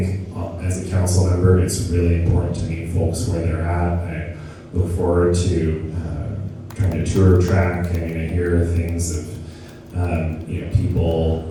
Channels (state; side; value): identical; both; correlation 1.00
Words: as a council member, it's really important to meet folks where they're at. I look forward to trying to tour track. I hear things of people